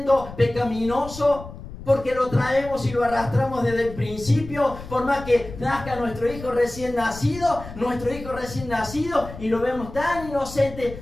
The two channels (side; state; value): left; noise; rumble, 13 dB below the sound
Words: pecaminoso, porque lo traemos y lo arrastramos desde el principio. Por más que nazca nuestro hijo recién nacido, y lo vemos tan